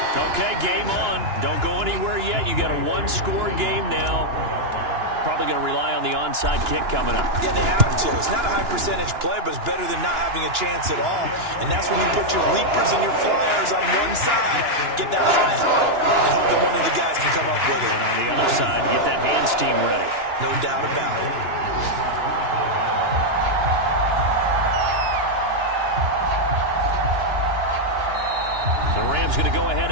Okay, game on. Don't go anywhere yet. You got a 1-score game now. Probably going to rely on the onside kick coming up. Yeah, they have to. It's not a high percentage play, but it's better than not having a chance at all. And that's when you put your leapers and your flyers on one side, get that high hop, and hope that one of the guys can come up with it. And on the other side, get that hands team ready. No doubt about it. The Rams going to go ahead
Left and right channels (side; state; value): left; late; 2.9 ms